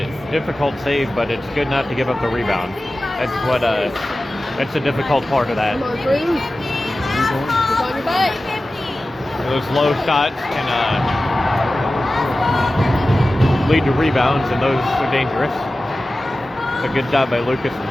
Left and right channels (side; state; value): both; normal; correlation 0.95